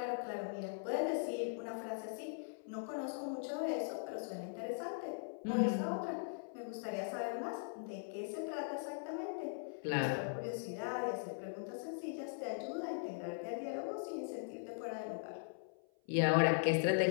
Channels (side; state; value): right; silent; 51 dB below the other